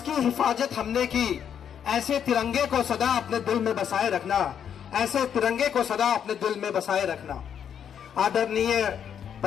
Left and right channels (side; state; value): right; quieter; 8.4 dB